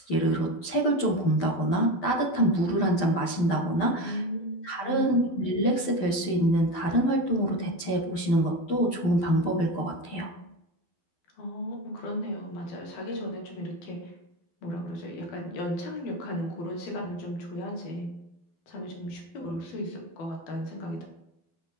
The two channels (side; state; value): right; late; 12 ms